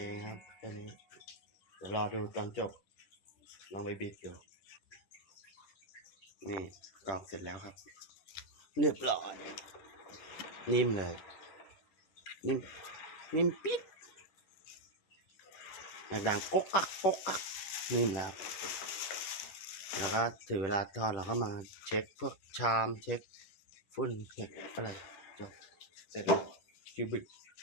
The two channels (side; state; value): right; late; 10 ms